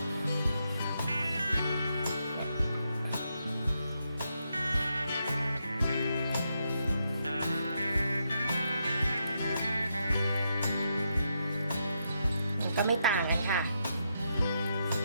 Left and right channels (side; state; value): both; inverted; correlation -0.81